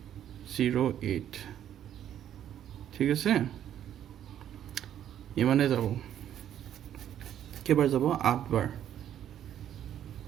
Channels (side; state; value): left; quieter; 10.6 dB